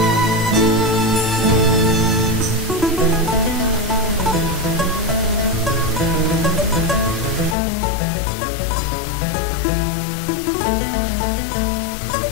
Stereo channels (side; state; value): right; drops out; at 7.6 s